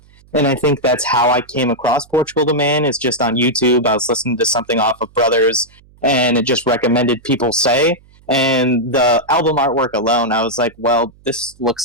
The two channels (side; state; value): right; noise; hum, 28 dB below the sound